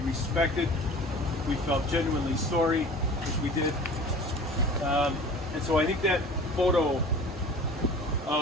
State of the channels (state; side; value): normal; both; correlation 0.42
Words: respected, we felt genuinely sorry, which we did. And so I think that photo